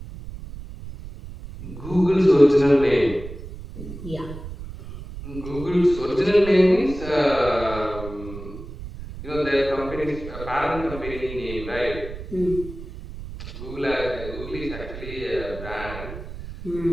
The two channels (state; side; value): noise; right; rumble, 11 dB below the sound